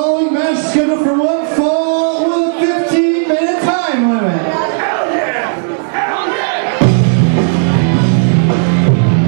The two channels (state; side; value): silent; left; digital silence